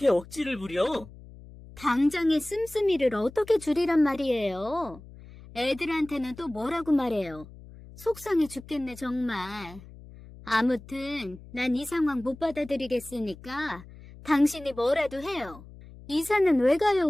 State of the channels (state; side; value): noise; left; hum, 18 dB below the sound